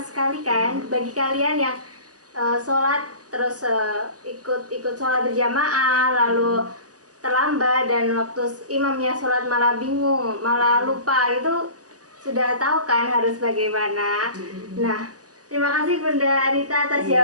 sekali kan bagi kalian yang sholat terus ikut sholat berjamaah lalu terlambat, dan waktu imamnya sholat malah bingung, malah lupa, itu sudah tahu kan harus bagaimana. Nah, terima kasih Bunda Anita atas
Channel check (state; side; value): late; left; 0.67 ms